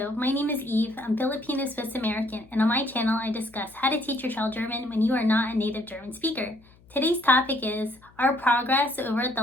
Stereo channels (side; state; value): left; noise; hum, 28 dB below the sound